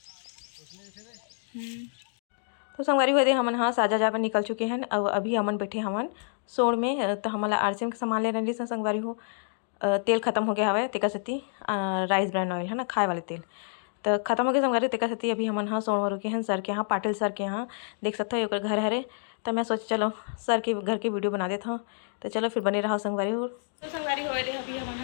उसमें जैसे तो संगवारी हुए थे हमन हाँ साजा जा पर निकल चुके हैं। अब अभी हमन बैठे हमन सोड़ में। तो हमारा आरसीएम के सामान ले रही संगवारी हो। तेल खत्म हो गया हवे तेका सती राइस ब्रांड ऑयल है ना खाए वाले तेल तो खत्म हो गया संगवारी तेका सती। अभी हमन हाँ सोड़ में रुके हैं सर के यहाँ पाटिल सर के यहाँ देख सकते हो घर हरे। तो मैं सोची चलो सर के घर की वीडियो बना देता हूँ। तो चलो फिर बने रहा संगवारी हो। तो संगवारी हो अभी हमन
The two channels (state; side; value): silent; right; digital silence